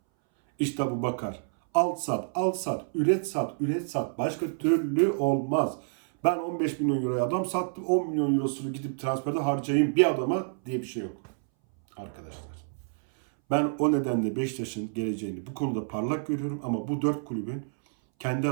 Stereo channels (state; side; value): silent; left; 59 dB below the other